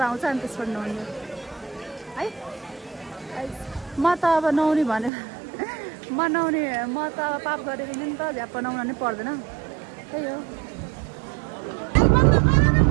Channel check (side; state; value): left; drops out; at 5.1 s